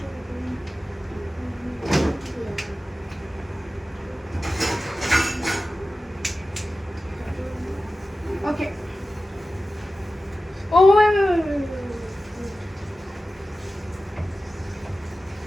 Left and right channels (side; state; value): both; normal; correlation 0.94